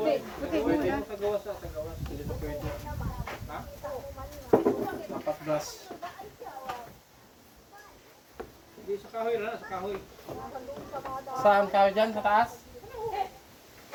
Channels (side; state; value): both; identical; correlation 1.00